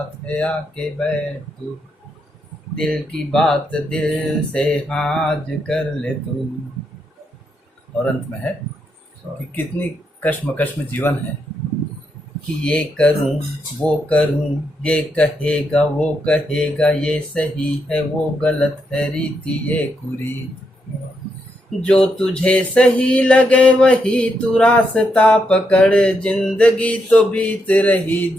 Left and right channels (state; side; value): normal; both; correlation 0.80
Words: आके बैठ तू, दिल की बात दिल से आज कर ले तू। और अंत में है कि कितनी कश्मकश में जीवन है कि ये करूं वो करूं, ये कहेगा वो कहेगा, ये सही है वो गलत है, रीति ये कुरीत। जो तुझे सही लगे वही तू रास्ता पकड़, जिंदगी तो बीत रही